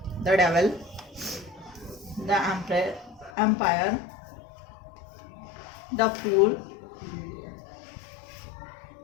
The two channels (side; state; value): right; drops out; at 3.3 s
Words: The devil, the empire, the fool,